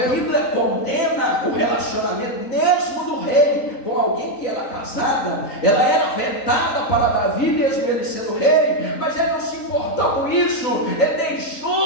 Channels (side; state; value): right; late; 3.9 ms